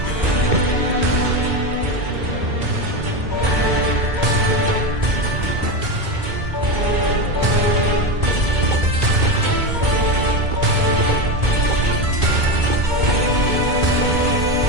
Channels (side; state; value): left; late; 2.2 ms